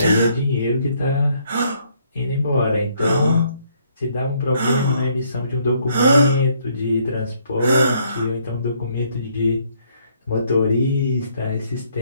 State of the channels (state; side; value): inverted; both; correlation -0.68